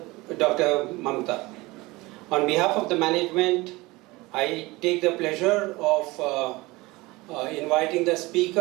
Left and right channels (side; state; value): left; quieter; 21.7 dB